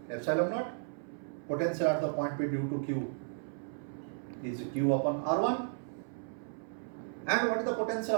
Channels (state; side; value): silent; left; 55 dB below the other